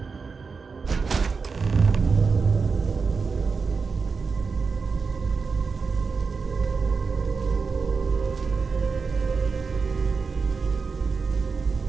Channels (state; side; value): quieter; left; 4.9 dB